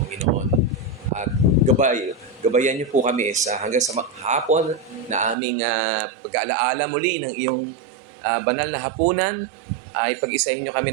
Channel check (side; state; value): left; drops out; at 5.4 s